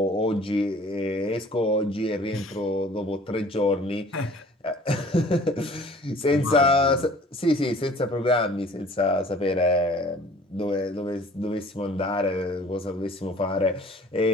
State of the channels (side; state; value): both; normal; correlation 0.50